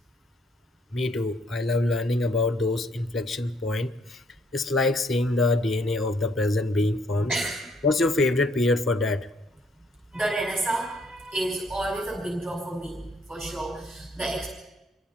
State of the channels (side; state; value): both; normal; correlation 0.67